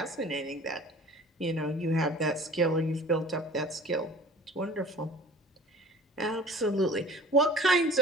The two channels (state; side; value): normal; both; correlation 0.46